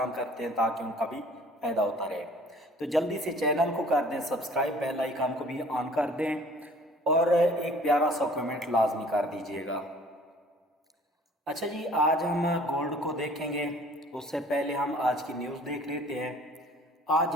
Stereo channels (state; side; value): normal; both; correlation 0.52